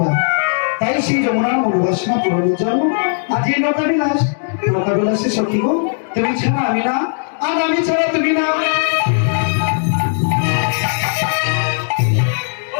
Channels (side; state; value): right; silent; digital silence